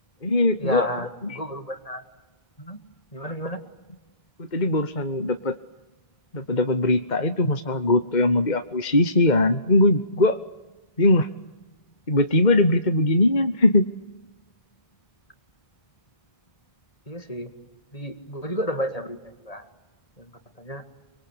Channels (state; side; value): late; right; 2.1 ms